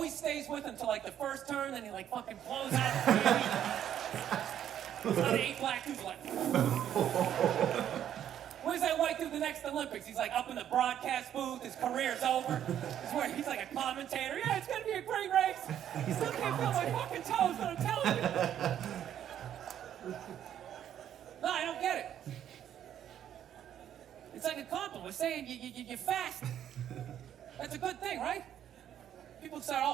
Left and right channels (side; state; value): left; quieter; 10.3 dB